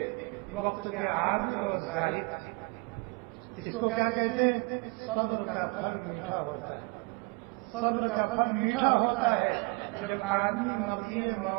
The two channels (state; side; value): quieter; left; 29.8 dB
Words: وقت کے عابد اور زاہد تھے۔ اس کو کیا کہتے ہیں؟ صبر کا پھل میٹھا ہوتا ہے، صبر کا پھل میٹھا ہوتا ہے جب آدمی مرضی